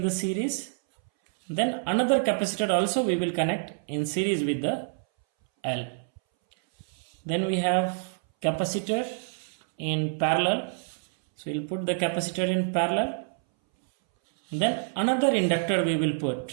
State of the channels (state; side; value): silent; left; 60 dB below the other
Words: the series, then another capacitor also we will connect in series with the L. Then we have capacitor in parallel, so we'll put the capacitor in parallel. Then another inductor we will